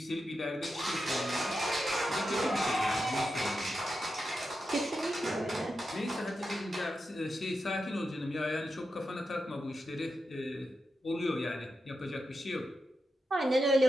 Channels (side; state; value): both; normal; correlation 0.88